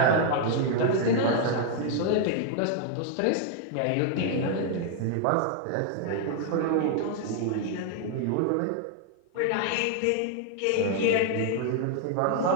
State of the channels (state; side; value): different; both; correlation 0.00